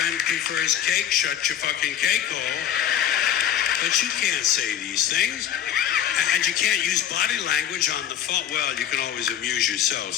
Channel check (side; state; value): right; quieter; 10.3 dB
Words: prefers cake, shut your fucking cake hole. But you can't say these things. And you can't use body language on the phone. Well, you can always amuse